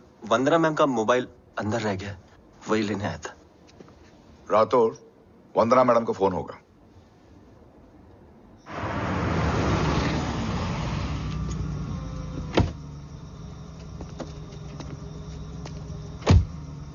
Vandana ma'am का मोबाइल अंदर रह गया, वही लेने आया था। राठौड़, वंदना मैडम का फोन होगा।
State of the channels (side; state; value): both; identical; correlation 1.00